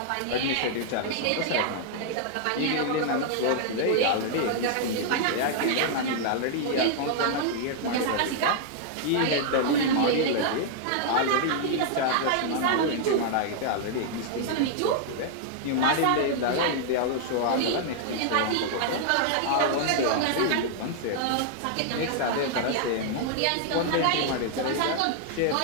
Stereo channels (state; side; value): different; both; correlation -0.01